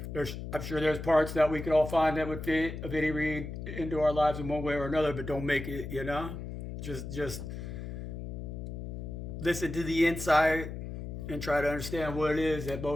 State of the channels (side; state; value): left; noise; hum, 7 dB below the sound